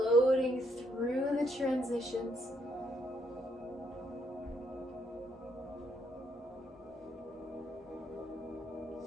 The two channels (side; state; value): both; normal; correlation 0.73